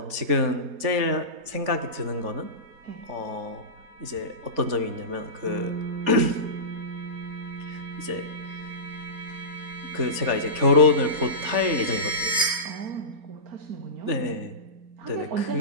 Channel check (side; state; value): left; late; 4.2 ms